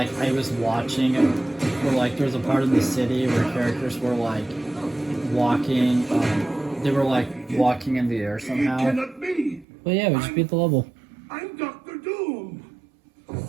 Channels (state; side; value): drops out; left; at 9.7 s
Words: I was watching, where like there was a part of the city where characters were like walking. They were like walking in the air somehow. Cannot be. But yeah, we just beat the level. I'm Dr. Doom.